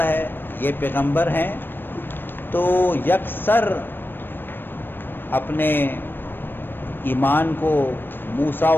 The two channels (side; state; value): right; late; 0.096 ms